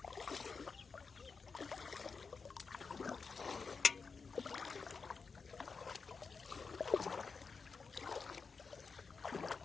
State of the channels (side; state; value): right; quieter; 5.0 dB